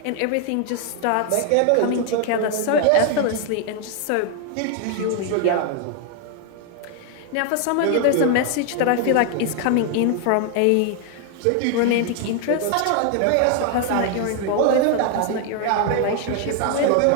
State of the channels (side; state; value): both; different; correlation 0.00